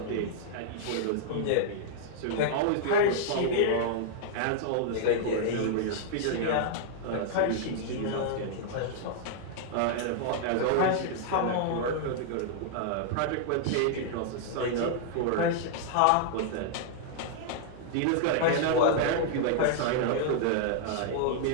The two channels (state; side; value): different; both; correlation -0.01